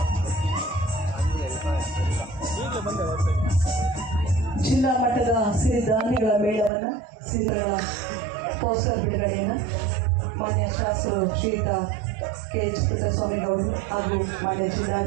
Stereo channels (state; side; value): drops out; left; at 6.7 s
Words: ಜಿಲ್ಲಾ ಮಟ್ಟದ ಸಿರಿಧಾನ್ಯಗಳ ಮೇಳವನ್ನು ಸಿರಿಗಳ ಪೋಸ್ಟರ್ ಬಿಡುಗಡೆಯನ್ನು ಮಾನ್ಯ ಶಾಸಕರು ಶ್ರೀಯುತ KH ಪುಟ್ಟಸ್ವಾಮಿಗೌಡರು ಹಾಗೂ ಮಾನ್ಯ